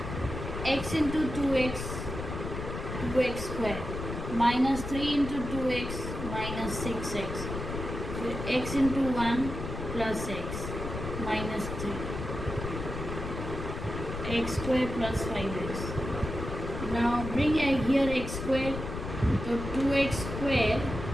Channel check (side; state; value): left; noise; rumble, 6 dB below the sound